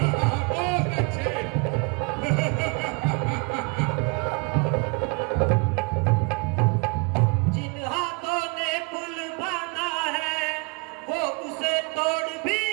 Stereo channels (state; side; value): quieter; left; 31.5 dB